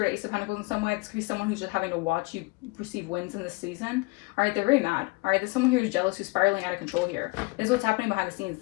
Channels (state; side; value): quieter; right; 27.2 dB